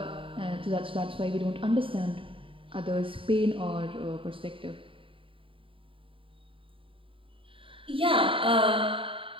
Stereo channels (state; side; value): late; left; 0.25 ms